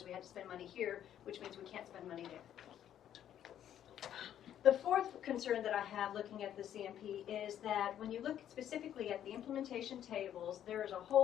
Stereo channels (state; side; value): quieter; right; 10.6 dB